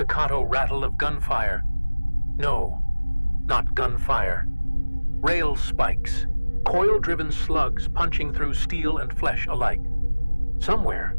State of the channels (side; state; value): both; inverted; correlation -1.00